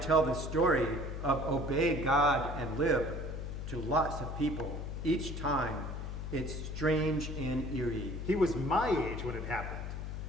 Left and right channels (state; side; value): noise; left; hum, 6 dB below the sound